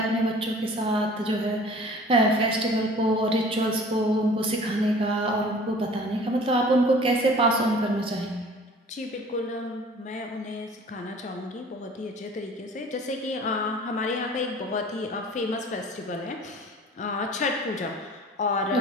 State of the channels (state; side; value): normal; both; correlation 0.47